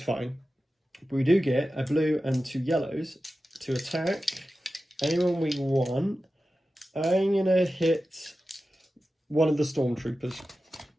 fine. But we do get a blue and 2 yellows to attack anyone we want. I'm going to hit one of the Stormtroopers.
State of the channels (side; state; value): both; normal; correlation 0.93